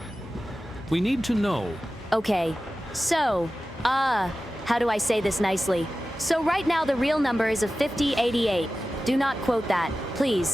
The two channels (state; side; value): normal; both; correlation 0.95